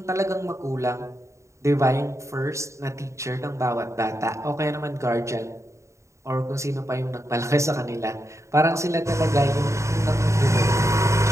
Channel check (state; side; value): late; left; 0.14 ms